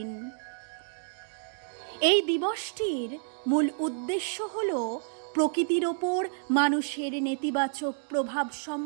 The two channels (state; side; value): silent; left; digital silence